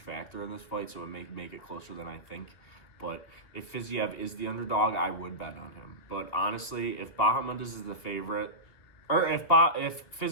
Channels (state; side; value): late; right; 2.8 ms